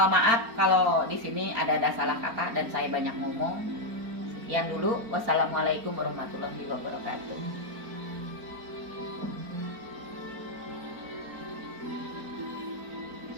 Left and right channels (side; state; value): left; late; 4.4 ms